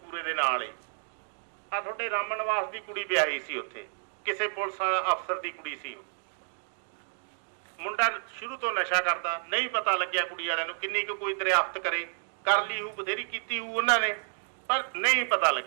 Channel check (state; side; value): silent; left; 58 dB below the other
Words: ਦੇ ਨਾਲ ਹੀ ਆ, ਤੁਹਾਡੇ ਰਾਮਨ ਨਿਵਾਸ ਦੀ ਕੁੜੀ ਵਿਆਹੀ ਸੀ ਉੱਥੇ, ਕਿਸੇ ਪੁਲਿਸ ਅਫਸਰ ਦੀ ਕੁੜੀ ਸੀ। ਮੁੰਡਾ ਸ਼ੁਰੂ ਤੋਂ ਨਸ਼ਾ ਕਰਦਾ, ਨਹੀਂ ਪਤਾ ਲੱਗਿਆ ਕੁੜੀ ਵਾਲਿਆਂ ਨੂੰ ਕਿੰਨੀ ਕੁ ਕੋਈ ਦਰਿਆਫਤ ਕਰੇ, ਕਰ ਲਈ ਹੂ, ਬਥੇਰੀ ਕੀਤੀ ਹੂ ਉਹਨਾਂ ਨੇ, ਪਰ ਨਹੀਂ ਪਤਾ